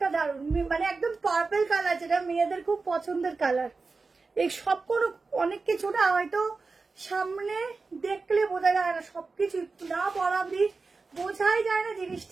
দারুণ, মানে একদম পার্পল কালার, যেটা মেয়েদের খুব পছন্দের কালার। এই সব কোনো অনেক কিছু না হয়তো সামনে দেখলে বোঝা যায় না, সবকিছু না পরা অব্দি বোঝাই যায় না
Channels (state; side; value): quieter; left; 4.1 dB